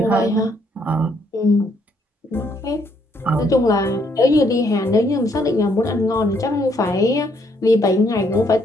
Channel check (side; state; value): both; normal; correlation 0.70